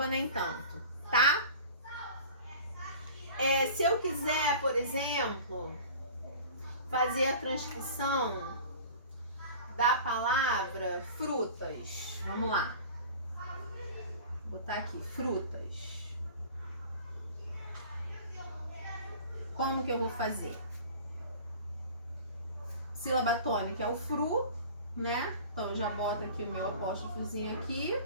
nem tanto, tá? Se eu quiser, por exemplo, fazer a transcrição da palavra frutas. Vamos lá. Vou botar aqui, frutas. Como que eu vou fazer? Sílaba tônica é o fru, né? Então eu já boto aqui o meu apóstrofozinho aqui.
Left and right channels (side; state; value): both; inverted; correlation -0.41